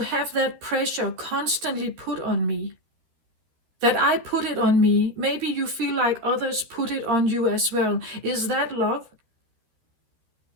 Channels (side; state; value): left; late; 13 ms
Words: have that pressure constantly put on me? That I put it on me, maybe you feel like others put it on you as well. Is that love?